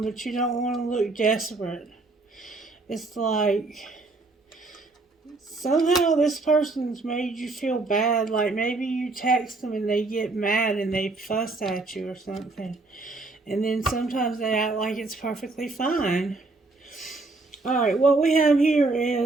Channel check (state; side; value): quieter; left; 3.4 dB